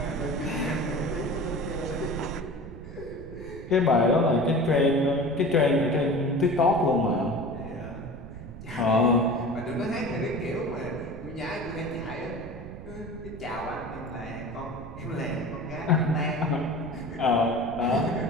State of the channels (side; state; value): right; noise; rumble, 13 dB below the sound